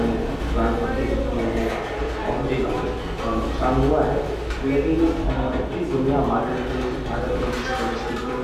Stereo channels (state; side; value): identical; both; correlation 1.00